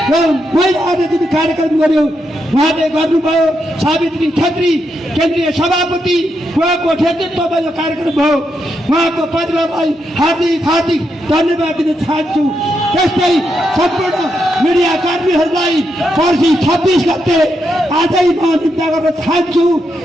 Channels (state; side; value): normal; both; correlation 0.82